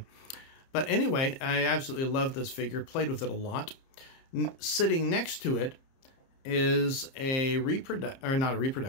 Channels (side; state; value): right; late; 30 ms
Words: But anyway, I absolutely love this figure, played with it a lot. Sitting next to it is a not a